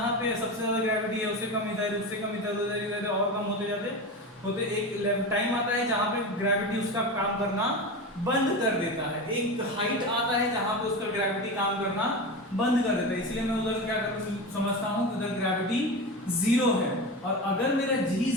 पे सबसे ज्यादा ग्रेविटी है, उससे कम इधर, उससे कम इधर, उधर और कम होते जाते होते एक टाइम आता है जहाँ पे ग्रेविटी उसका काम करना बंद कर देता है, एक हाइट आता है जहाँ पे उसका ग्रेविटी काम करना बंद कर देता है। इसलिए मैं उधर क्या समझता हूँ, उधर ग्रेविटी जीरो है। और अगर मेरा जी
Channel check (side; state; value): both; normal; correlation 0.24